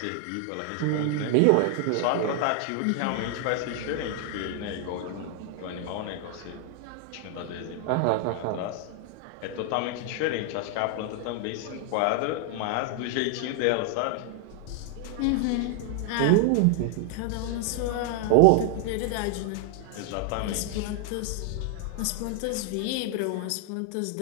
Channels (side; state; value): both; different; correlation 0.00